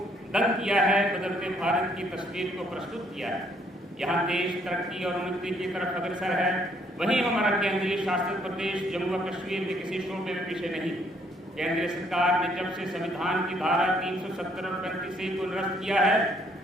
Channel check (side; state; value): both; normal; correlation 0.67